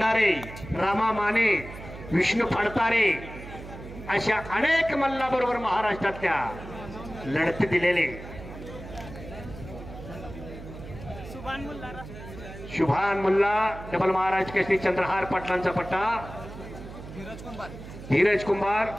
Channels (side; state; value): right; noise; hum, 13 dB below the sound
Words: रामा माने, विष्णू फडतारे अशा अनेक मल्लाबरोबर महाराष्ट्रातल्या लढती दिलेले शुभान मुल्ला डबल महाराज केसरी चंद्रहार पाटलांचा पट्टा धीरज कुंभार